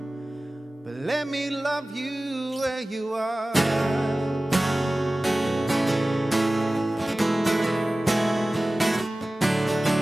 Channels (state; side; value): normal; both; correlation 0.97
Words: But let me love you where you are.